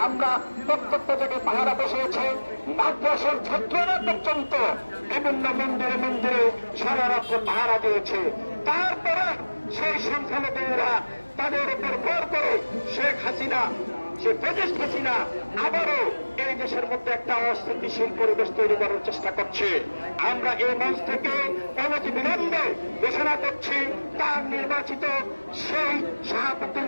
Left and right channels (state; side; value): inverted; both; correlation -1.00